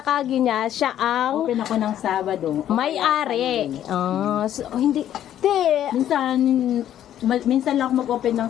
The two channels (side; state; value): right; quieter; 11.2 dB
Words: Kagi niya, siya ang Open ako ng Sabado. may-ari. So, hindi. Te, Minsan lang ako mag-open